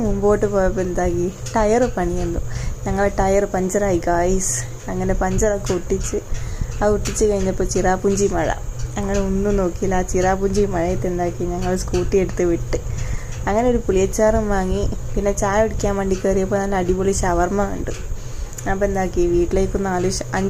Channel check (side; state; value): both; identical; correlation 1.00